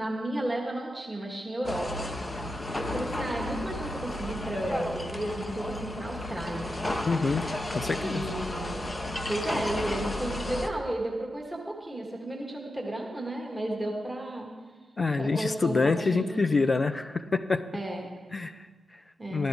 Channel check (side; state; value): both; normal; correlation 0.89